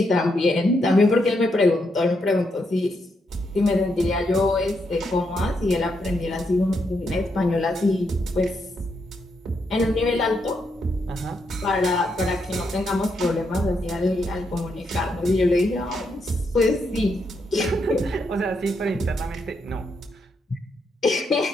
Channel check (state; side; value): normal; both; correlation 0.79